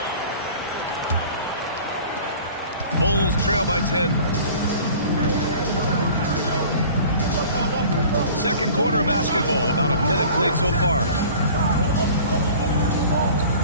Bulls trail by 10. Second quarter of basketball, about a minute played so far.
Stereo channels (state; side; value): inverted; both; correlation -0.45